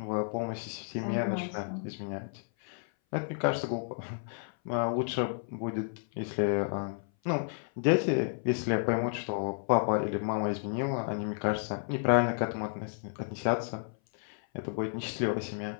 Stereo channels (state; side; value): silent; right; 56 dB below the other